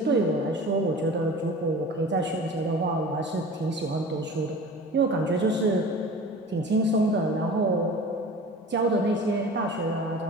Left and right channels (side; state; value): both; normal; correlation 0.39